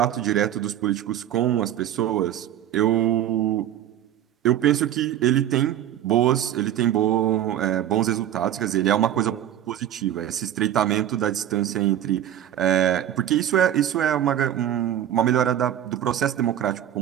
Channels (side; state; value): left; quieter; 11.2 dB